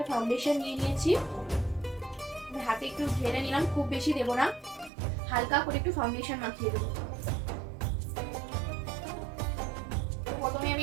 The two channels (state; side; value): drops out; left; at 4.9 s